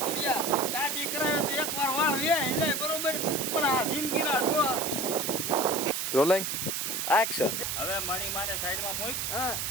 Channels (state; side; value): noise; right; hiss, 1 dB below the sound